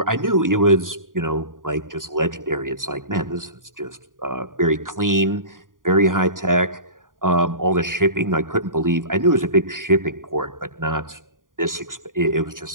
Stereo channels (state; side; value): late; left; 0.89 ms